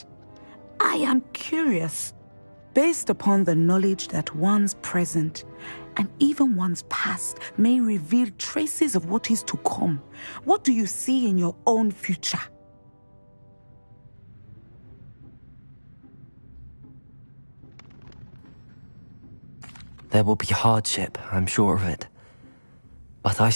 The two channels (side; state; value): both; inverted; correlation -1.00